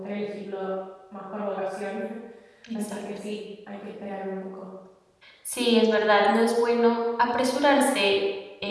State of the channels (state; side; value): identical; both; correlation 1.00